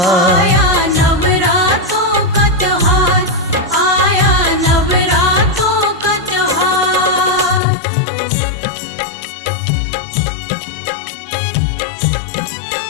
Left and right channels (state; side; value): drops out; right; at 7.6 s